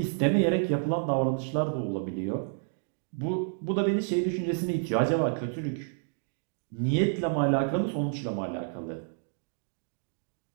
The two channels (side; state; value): left; silent; 58 dB below the other